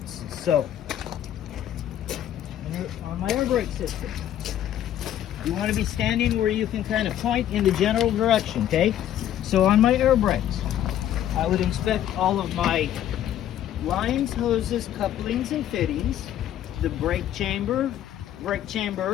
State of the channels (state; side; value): quieter; right; 11.3 dB